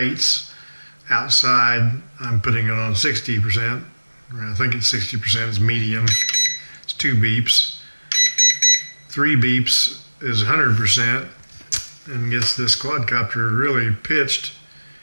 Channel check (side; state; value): both; inverted; correlation -1.00